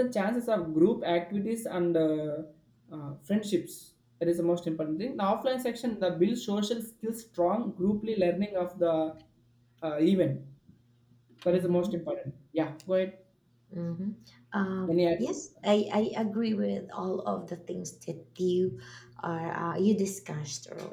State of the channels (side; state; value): both; identical; correlation 1.00